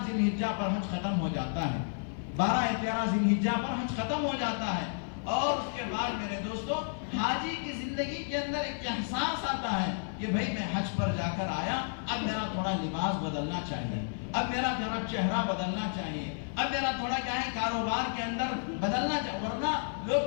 ذی الحجہ پر حج ختم ہو جاتا ہے، 12 یا 13 ذی الحجہ پر حج ختم ہو جاتا ہے۔ اور اس کے بعد میرے دوستو حاجی کی زندگی کے اندر ایک احساس آتا ہے کہ بھئی میں حج پر جا کر آیا، اب میرا تھوڑا لباس بدلنا چاہیے، اب میرا تھوڑا چہرہ بدلنا چاہیے، اب میرا تھوڑا کیا ہے کاروبار کے اندر بدلنا چاہیے، ورنہ لوگ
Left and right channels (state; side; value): silent; right; 57 dB below the other